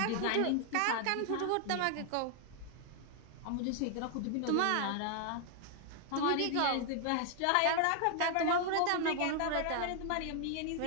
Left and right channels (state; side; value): different; both; correlation 0.00